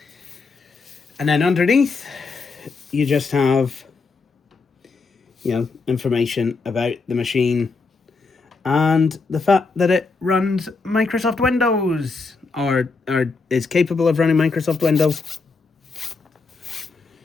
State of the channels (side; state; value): right; quieter; 4.2 dB